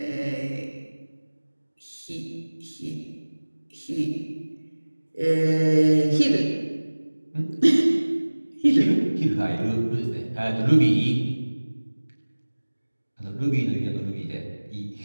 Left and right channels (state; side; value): inverted; both; correlation -1.00